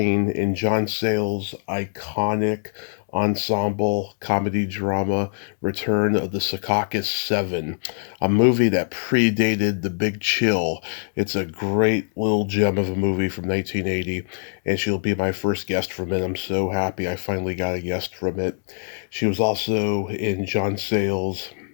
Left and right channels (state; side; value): silent; right; digital silence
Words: in John Sayles' iconic ensemble comedy drama Return of the Secaucus 7, a movie that predated The Big Chill. It's a great little gem of a movie from 1980, and she'll be my first guest from it. I'm so happy I finally got a guest from it. She was also in John Sayles'